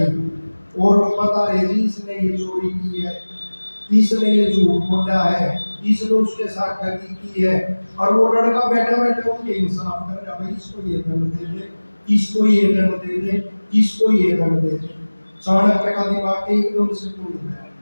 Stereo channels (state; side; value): inverted; both; correlation -1.00